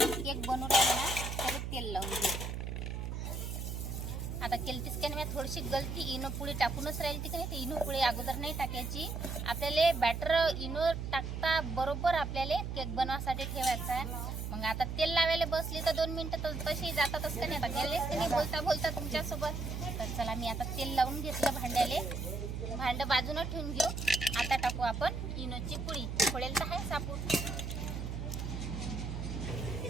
केक बनवू राहिलो ना त्याला तेल लावून घेऊ. आता केलतीच की नाही, थोडीशी गलती इनो पुडी टाकूनच राहील ती की नाही. ते इनो पुडी अगोदर नाही टाकायची. आपल्याला बॅटर इनो टाकता बरोबर आपल्याला केक बनवासाठी ठेवायचा आहे. मग आता तेल लावायला बसली तर 2 मिनिटं तर तशी जातातच का नाही. आता गेलेच की नाही बोलता तुमच्यासोबत. तर चला मी आता तेल लावून घेतलं भांड्याले. भांडं बाजूनं ठेवून घेऊ. आता टाकू आपण इनोची पुडी. फोडेल तर आहे सापून.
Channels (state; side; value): noise; right; hum, 4 dB below the sound